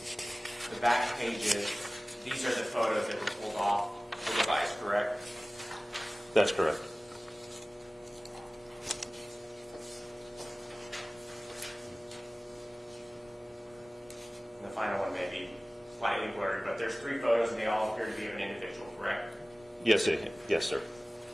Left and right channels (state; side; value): normal; both; correlation 0.98